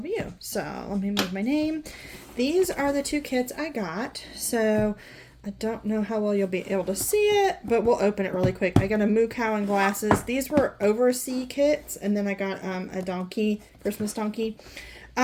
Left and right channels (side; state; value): both; identical; correlation 1.00